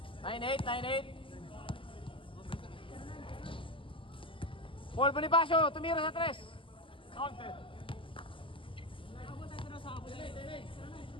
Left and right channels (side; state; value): right; late; 0.25 ms